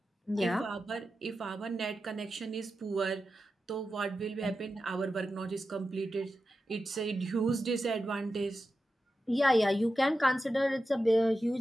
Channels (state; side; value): normal; both; correlation 0.91